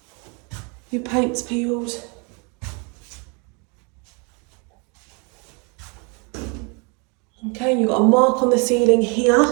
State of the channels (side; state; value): left; quieter; 33.2 dB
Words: your paint's peeled. Okay, you've got a mark on the ceiling here.